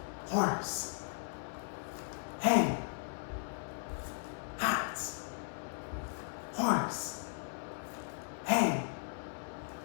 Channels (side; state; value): right; silent; 53 dB below the other